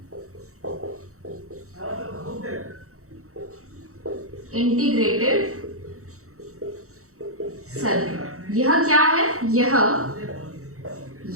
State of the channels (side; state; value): left; late; 0.64 ms